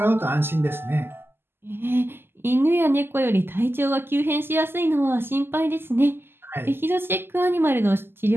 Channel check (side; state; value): left; late; 0.11 ms